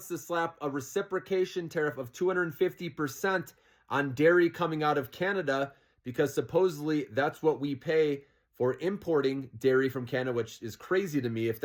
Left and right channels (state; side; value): identical; both; correlation 1.00